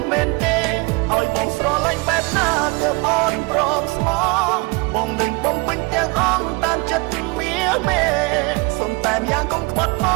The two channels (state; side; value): quieter; left; 28.1 dB